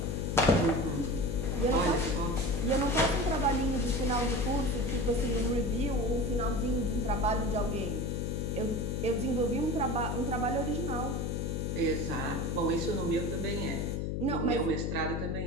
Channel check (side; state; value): left; noise; hum, 1 dB below the sound